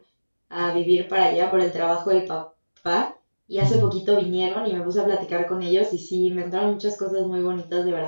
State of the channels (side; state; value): both; inverted; correlation -1.00